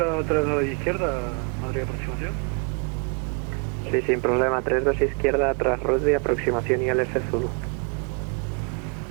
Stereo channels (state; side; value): quieter; left; 34.1 dB